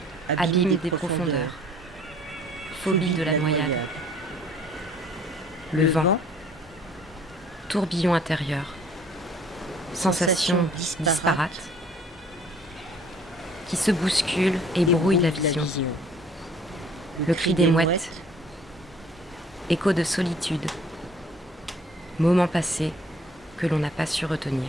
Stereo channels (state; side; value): normal; both; correlation 0.55